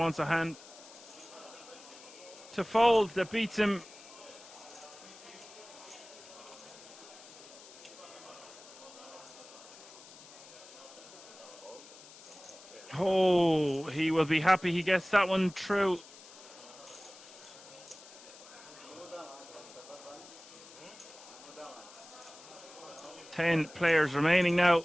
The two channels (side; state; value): left; noise; hiss, 19 dB below the sound